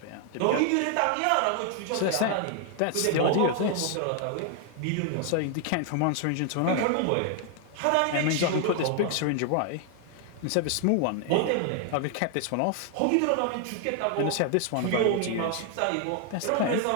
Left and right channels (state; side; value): different; both; correlation 0.00